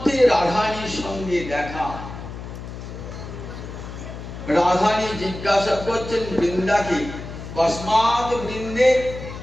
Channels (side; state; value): left; noise; hum, 10 dB below the sound